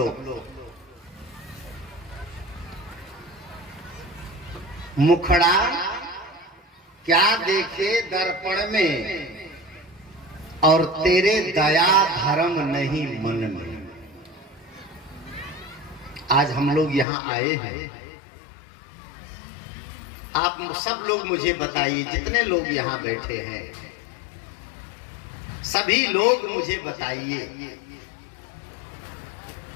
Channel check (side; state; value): right; drops out; at 17.1 s